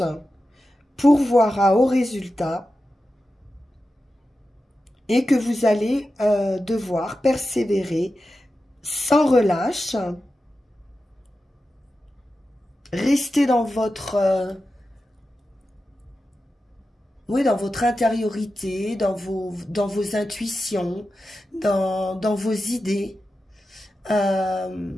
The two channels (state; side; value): normal; both; correlation 0.92